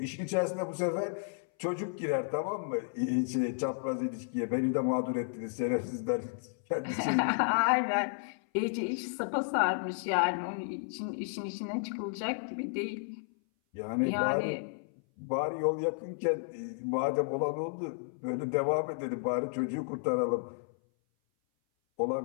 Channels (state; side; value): silent; right; 56 dB below the other